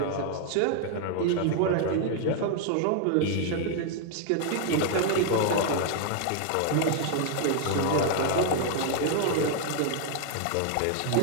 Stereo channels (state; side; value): different; both; correlation 0.00